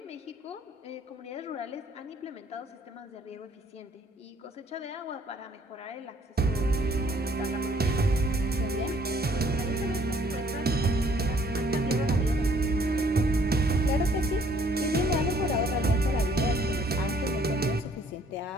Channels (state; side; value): normal; both; correlation 0.62